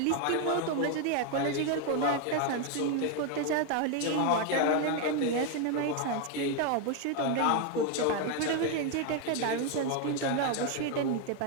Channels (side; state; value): both; different; correlation 0.01